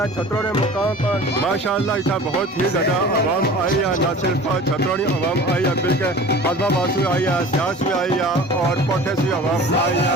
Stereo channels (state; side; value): normal; both; correlation 0.41